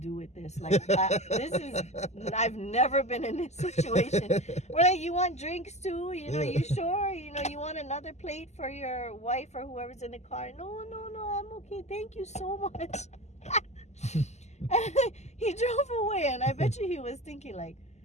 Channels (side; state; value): right; late; 0.33 ms